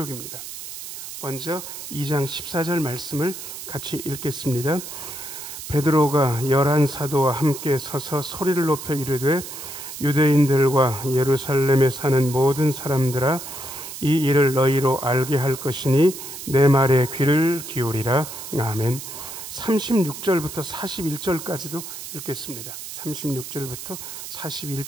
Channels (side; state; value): right; noise; hiss, 10 dB below the sound